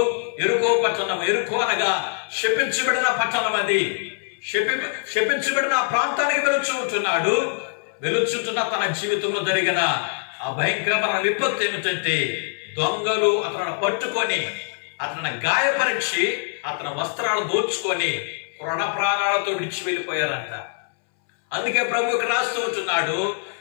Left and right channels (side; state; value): right; silent; 63 dB below the other